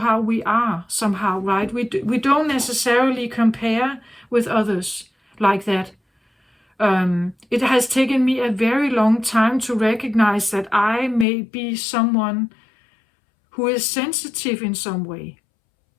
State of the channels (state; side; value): drops out; right; at 11.2 s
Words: we are somehow, right? We don't necessarily compare with others like that. It has taken me a very long time to recognize that I may be someone who is sensitive in some way.